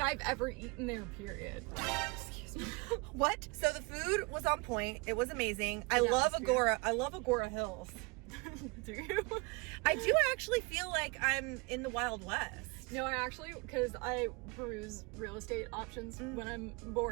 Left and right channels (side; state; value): left; quieter; 28.4 dB